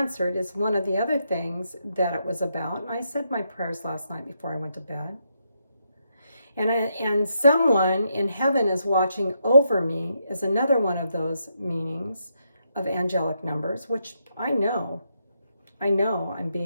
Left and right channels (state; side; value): inverted; both; correlation -0.80